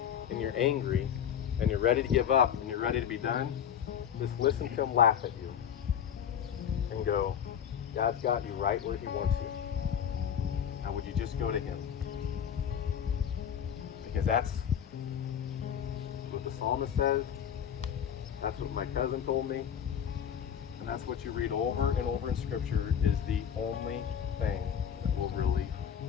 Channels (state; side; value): quieter; right; 8.7 dB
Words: and you're angry and you're ready to give up and you're ready to be done, just listen to him laugh at you and go, God's got you right where He wants you. Now would you just go to Him? Because that's what the psalmist says, that's what my cousin told me, and that's what you read over and over in Scripture is the only thing that will really